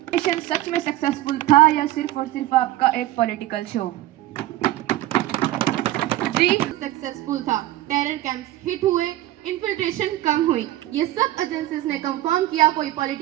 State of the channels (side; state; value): left; quieter; 15.5 dB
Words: मिशन सच में सक्सेसफुल था या सिर्फ और सिर्फ आपका एक पॉलिटिकल शो? जी, सक्सेसफुल था। टेरर कैंप्स हिट हुए, इन्फिल्ट्रेशन कम हुई। ये सब एजेंसीज ने कंफर्म किया, कोई